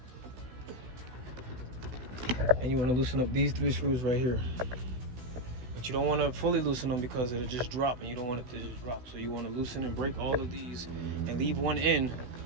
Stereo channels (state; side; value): late; left; 16 ms